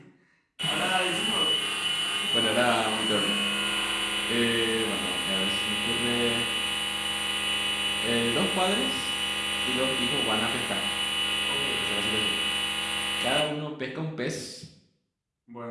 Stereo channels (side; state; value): both; identical; correlation 1.00